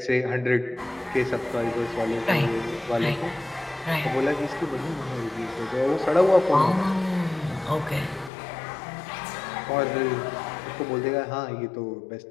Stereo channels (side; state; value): right; drops out; at 8.3 s